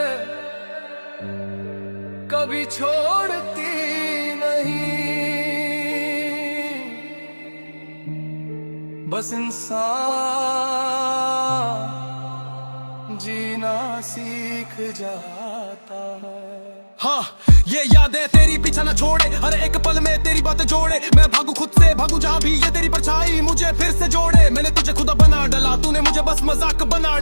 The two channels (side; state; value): both; inverted; correlation -1.00